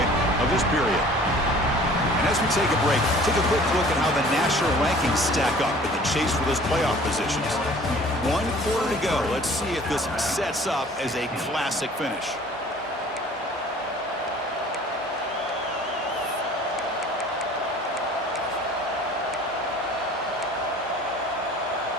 of this period. And as we take a break, take a quick look at how the national rankings stack up in the chase for those playoff positions. 1 quarter to go. Let's see if this sets up as a classic finish.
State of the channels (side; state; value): both; normal; correlation 0.49